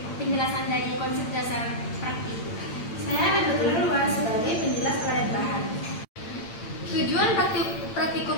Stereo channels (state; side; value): late; right; 8.8 ms